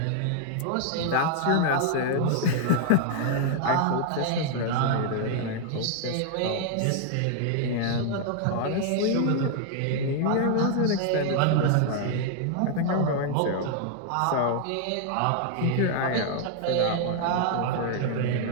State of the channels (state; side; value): different; both; correlation 0.00